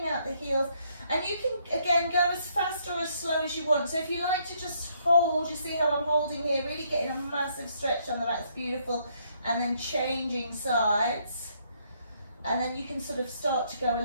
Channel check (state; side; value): inverted; both; correlation -0.70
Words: out the heels. And you can, again, go as fast or as slow as you want. So if you like to just hold, you see how I'm holding here, really getting a massive stretch on the back, it's beautiful. And then changing sides. And then you can sort of start to go a